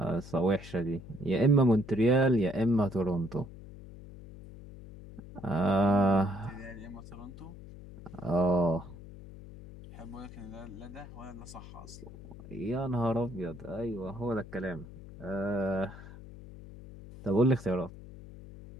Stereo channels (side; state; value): left; noise; hum, 15 dB below the sound